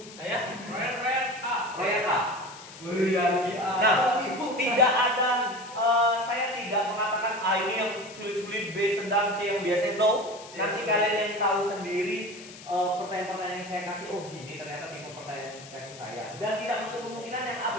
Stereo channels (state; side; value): noise; left; hiss, 17 dB below the sound